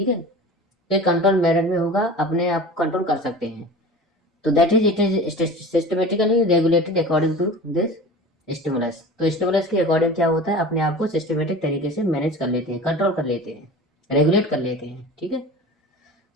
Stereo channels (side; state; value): both; normal; correlation 0.36